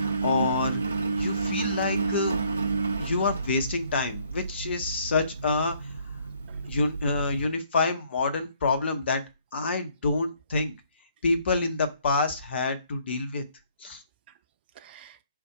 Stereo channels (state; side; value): inverted; both; correlation -0.65